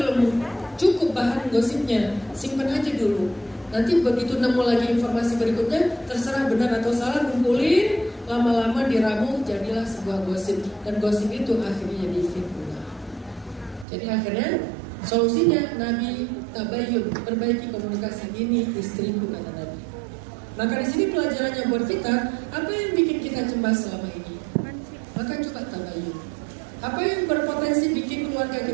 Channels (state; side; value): drops out; left; at 13.9 s